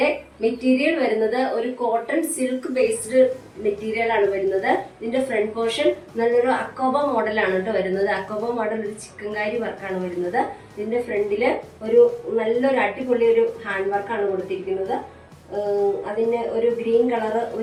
മെറ്റീരിയൽ വരുന്നത് ഒരു കോട്ടൺ സിൽക്ക് ബേസ്ഡ് മെറ്റീരിയൽ ആണ് വരുന്നത്. ഇതിന്റെ ഫ്രണ്ട് പോർഷൻ നല്ലൊരു അക്കോബ മോഡലാണ് കേട്ടോ വരുന്നത്. അക്കോബ മോഡൽ ഒരു ചിക്കൻകാരി വർക്കാണ് വരുന്നത്. ഇതിന്റെ ഫ്രണ്ടില് ഒരു നല്ലൊരു അടിപൊളി ഒരു ഹാൻഡ് വർക്കാണ് കൊടുത്തിരിക്കുന്നത്. അതിന് ഒരു ഗ്രീൻ കളറ്,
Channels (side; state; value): both; identical; correlation 1.00